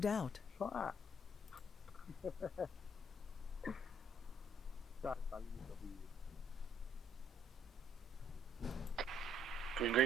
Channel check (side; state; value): both; normal; correlation 0.65